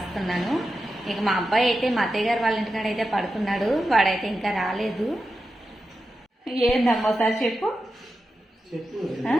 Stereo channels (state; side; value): normal; both; correlation 0.90